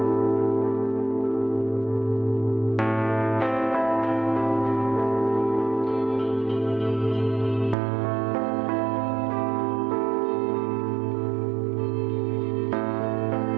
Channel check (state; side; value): drops out; left; at 7.8 s